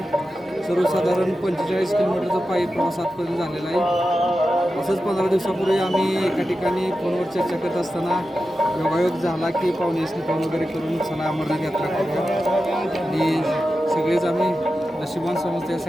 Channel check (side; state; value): both; normal; correlation 0.92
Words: सर्वसाधारण 45 किलोमीटरचा पायी प्रवास आजपर्यंत झालेला आहे. असंच 15 दिवसापूर्वी आम्ही एका ठिकाणी फोनवर चर्चा करत असताना योगायोग झाला की पाहुण्यासनी फोन वगैरे करून चला अमरनाथ यात्रा करूया. आणि सगळेच आम्ही नशिबान समजतो या